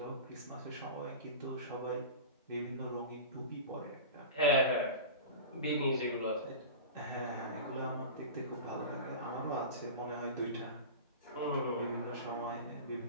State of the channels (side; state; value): both; inverted; correlation -0.31